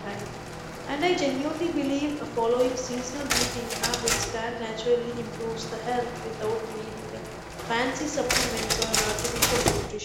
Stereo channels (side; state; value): both; identical; correlation 1.00